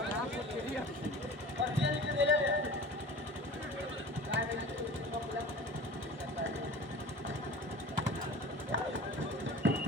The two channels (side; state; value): both; normal; correlation 0.38